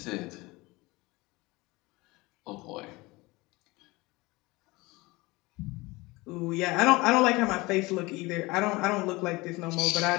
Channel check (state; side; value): quieter; right; 22.5 dB